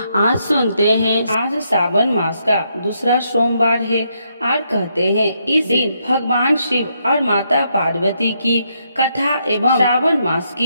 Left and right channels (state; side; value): inverted; both; correlation -0.77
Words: आज सुनते हैं। आज सावन मास का दूसरा सोमवार है और कहते हैं इस दिन भगवान शिव और माता पार्वती की कथा एवं श्रावण मास